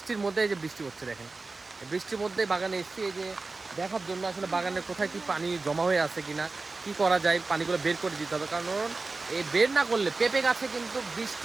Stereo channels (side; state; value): left; quieter; 3.7 dB